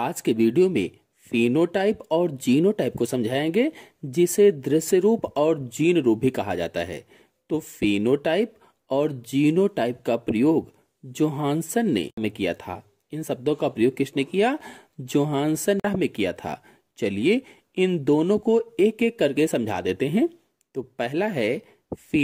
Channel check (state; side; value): identical; both; correlation 1.00